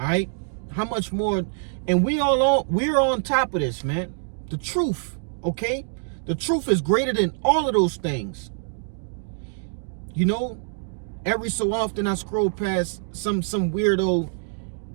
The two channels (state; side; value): silent; left; digital silence